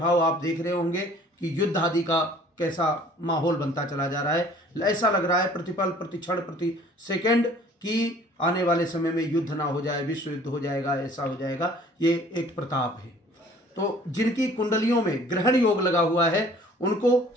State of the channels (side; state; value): both; normal; correlation 0.52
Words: आप देख रहे होंगे कि युद्ध आदि का कैसा माहौल बनता चला जा रहा है। ऐसा लग रहा है प्रतिपल, प्रति क्षण, प्रति सेकंड कि आने वाले समय में युद्ध ना हो जाए, विश्व युद्ध हो जाएगा, ऐसा हो जाएगा। ये एक प्रताप है। तो जिनकी कुंडलियों में ग्रहण योग लगा हुआ है उनको